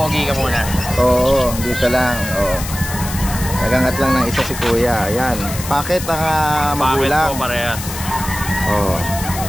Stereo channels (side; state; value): left; noise; hiss, 9 dB below the sound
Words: ka muna. Oo, dito lang. Oo. Nagangat lang ng isa si kuya. Ayan. Packet ang magulang. Parehas. Oo.